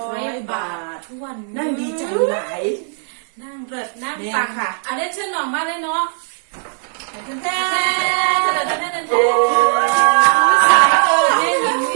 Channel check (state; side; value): silent; left; digital silence